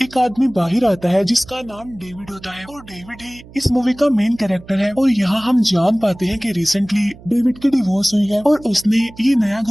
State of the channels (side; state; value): right; noise; hum, 21 dB below the sound